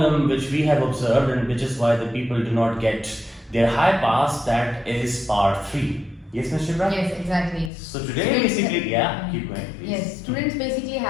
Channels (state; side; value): drops out; right; at 7.7 s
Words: which we have observed, and which is why the people do not get their high pass, that is part 3. Yes, Ms. Shibra? Yes, exactly. So today basically, keep going please. Yes, students basically